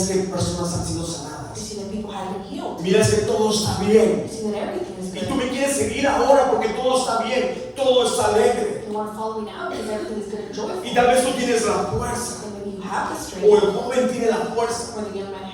que personas han sido You sanadas. see that people have been healed. Miras que todo está bien. You see that everything is Y tú good. me quieres seguir ahora porque todo está bien, todo está alegre. You want to follow me now because everything is good and joyful. Y tal vez tú tienes la fuerza, And maybe you have the o strength, el joven tiene la fuerza. or the young man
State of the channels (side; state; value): both; identical; correlation 1.00